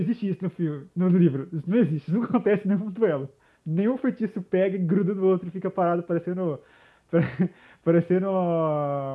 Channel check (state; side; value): identical; both; correlation 1.00